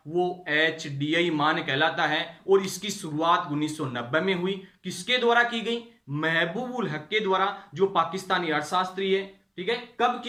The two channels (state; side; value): identical; both; correlation 1.00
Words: वो HDI मान कहलाता है। और इसकी शुरुआत 1990 में हुई। किसके द्वारा की गई? महबूब उल हक के द्वारा, जो पाकिस्तानी अर्थशास्त्री है। ठीक है, कब